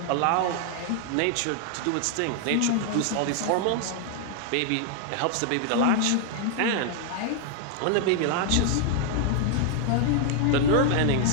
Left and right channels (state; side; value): different; both; correlation 0.00